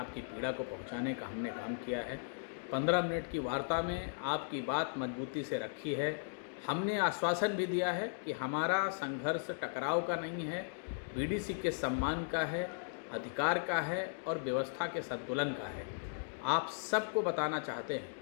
पीड़ा को पहुंचाने का हमने काम किया है। 15 मिनट की वार्ता में आपकी बात मजबूती से रखी है। हमने आश्वासन भी दिया है कि हमारा संघर्ष टकराव का नहीं है, बीडीसी के सम्मान का है, अधिकार का है और व्यवस्था के संतुलन का है। आप सबको बताना चाहते हैं,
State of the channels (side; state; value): right; silent; digital silence